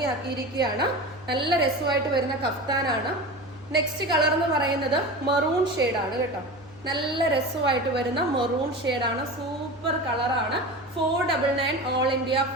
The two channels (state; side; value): normal; both; correlation 0.29